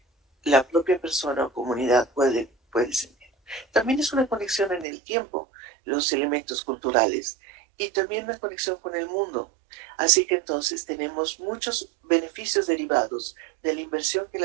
la propia persona o comunidad puede sentir. También es una conexión en el tiempo, los elementos culturales, y también una conexión con el mundo. Así que entonces tenemos muchos beneficios derivados de la inversión que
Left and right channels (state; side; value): drops out; left; at 4.9 s